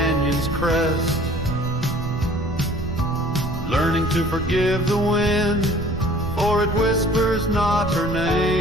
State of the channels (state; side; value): noise; right; rumble, 7 dB below the sound